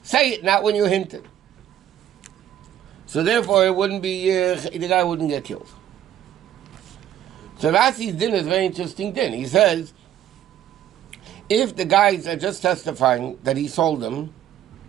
say it, not when you hint it. So therefore, it wouldn't be the guy wouldn't get killed. So Rasi's din is a very interesting din. He says, if the guys are just testifying that he sold them,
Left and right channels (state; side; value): quieter; left; 11.1 dB